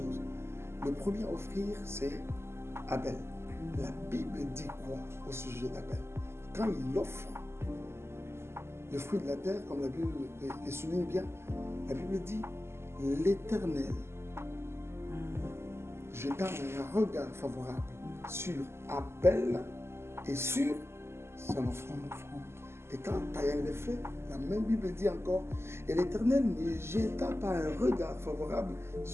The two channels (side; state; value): left; late; 0.12 ms